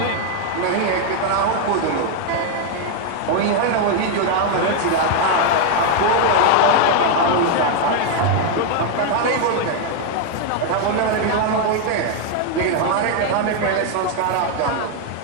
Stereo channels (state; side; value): different; both; correlation 0.01